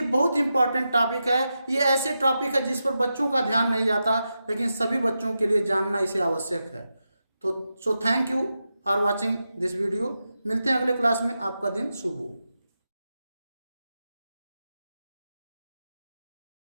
बहुत इंपॉर्टेंट टॉपिक है, ये ऐसे टॉपिक है जिस पर बच्चों का ध्यान नहीं जाता, लेकिन सभी बच्चों के लिए जानना इसे आवश्यक है। तो thank you for watching this video. मिलते हैं अगले क्लास में, आपका दिन शुभ हो।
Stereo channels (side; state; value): both; inverted; correlation -0.89